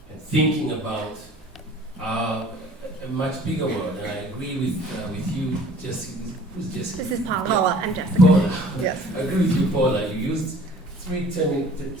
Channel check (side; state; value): both; normal; correlation 0.50